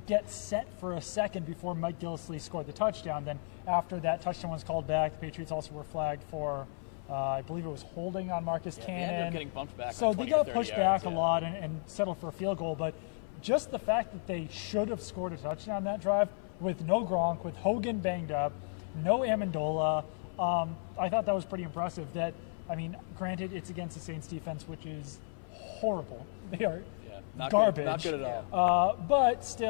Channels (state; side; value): silent; right; 55 dB below the other